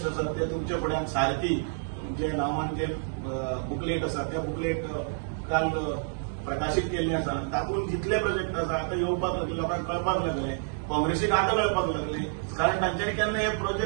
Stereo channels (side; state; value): left; silent; digital silence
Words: आसात ते तुमचे फुड्यान सारथी जे नांवान जे बुकलेट आसा त्या बुकलेट काल प्रकाशीत केल्ले आसा. तातूंत जितले प्रोजेक्ट आसा आतां येवपाक लागले, लोकांक कळपाक लागले, काँग्रेसीक आतां कळपाक लागले. कारण तांच्यांनी केन्ना हे